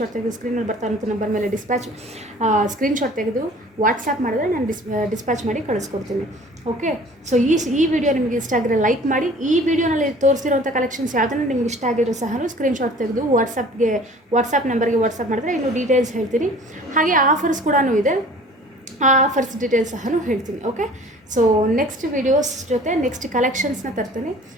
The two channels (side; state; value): both; normal; correlation 0.48